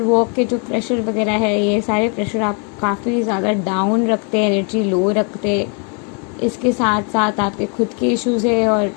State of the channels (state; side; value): quieter; right; 38.1 dB